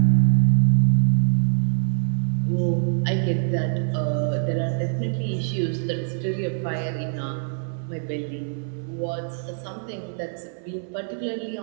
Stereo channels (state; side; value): silent; left; 60 dB below the other